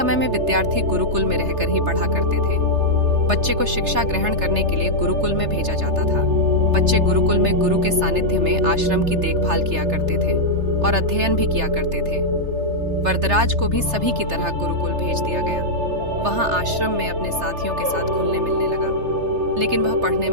में विद्यार्थी गुरुकुल में रहकर ही पढ़ा करते थे। बच्चे को शिक्षा ग्रहण करने के लिए गुरुकुल में भेजा जाता था। बच्चे गुरुकुल में गुरु के सानिध्य में आश्रम की देखभाल किया करते थे और अध्ययन भी किया करते थे। वरदराज को भी सभी की तरह गुरुकुल भेज दिया गया। वहां आश्रम में अपने साथियों के साथ घुलने मिलने लगा, लेकिन वह पढ़ने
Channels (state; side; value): late; left; 3.3 ms